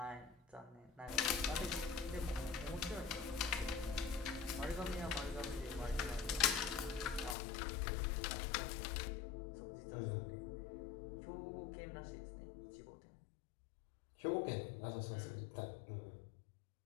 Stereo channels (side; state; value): right; drops out; at 7.4 s